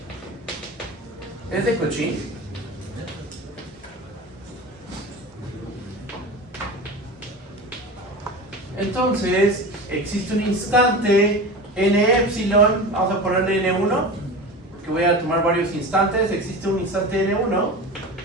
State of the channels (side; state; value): both; normal; correlation 0.30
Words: es de Cauchy, entonces existe un instante n epsilon, vamos a ponerle n1, que voy a tomar varios instantes. Existe un instante n1